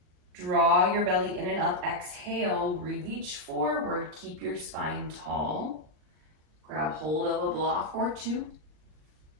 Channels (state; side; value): late; left; 39 ms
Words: Draw your belly in and up. Exhale, reach forward. Keep your spine tall. Grab hold of a block or two.